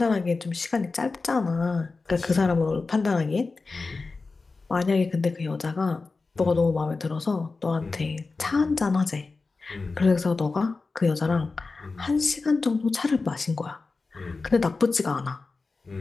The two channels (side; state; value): right; quieter; 3.9 dB